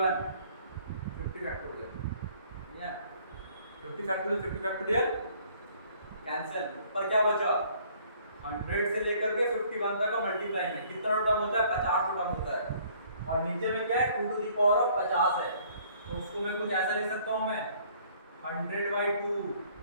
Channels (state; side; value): inverted; both; correlation -0.59